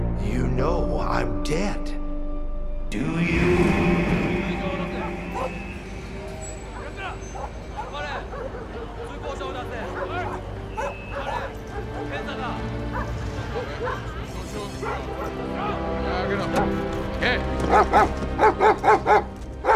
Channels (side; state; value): both; identical; correlation 1.00